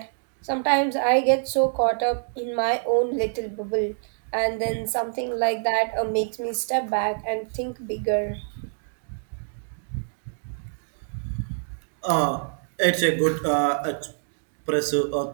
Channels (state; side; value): silent; left; digital silence